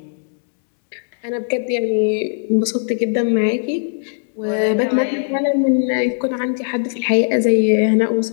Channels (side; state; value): right; silent; digital silence